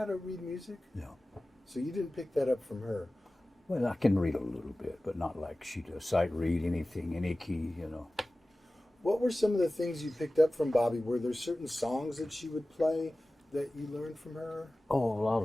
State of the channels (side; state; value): both; normal; correlation 0.97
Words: to read music? No. So you didn't pick that up from her. Well, I can read a little bit, but not like she does. Sight read anything, any key, you know. What were some of the things you picked up from Bobbie? Were there certain songs that she would play that you learned from her? Oh, a lot